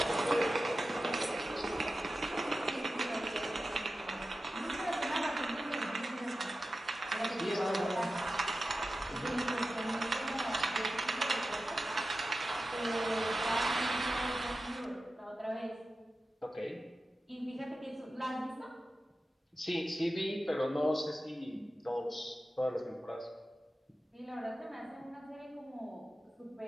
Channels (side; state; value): both; normal; correlation 0.93